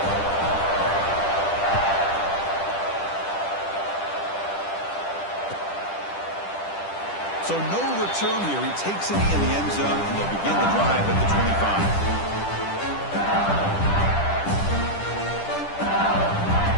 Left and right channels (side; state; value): right; late; 10 ms